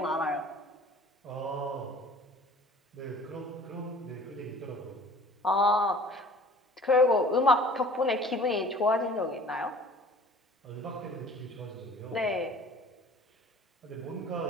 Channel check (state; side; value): normal; both; correlation 0.47